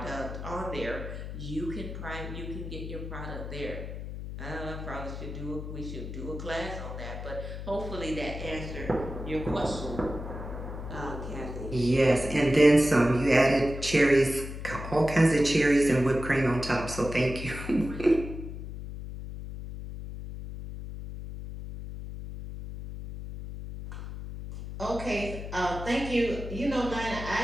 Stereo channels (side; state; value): left; noise; hum, 8 dB below the sound